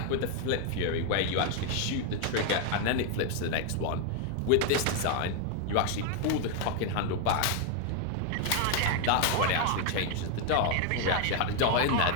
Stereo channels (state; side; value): different; both; correlation 0.01